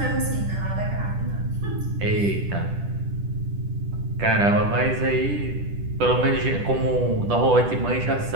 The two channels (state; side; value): late; left; 10 ms